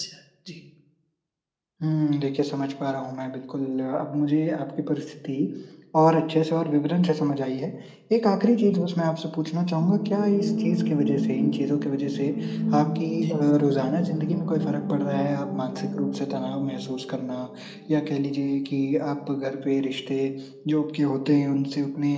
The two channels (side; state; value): both; identical; correlation 1.00